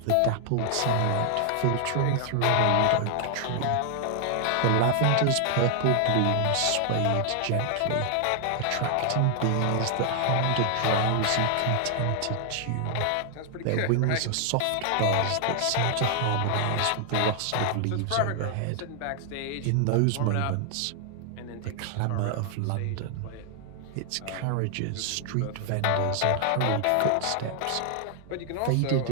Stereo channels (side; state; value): both; different; correlation 0.00